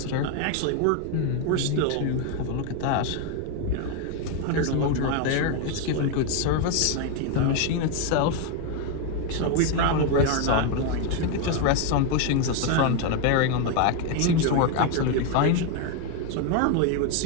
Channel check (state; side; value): different; both; correlation 0.01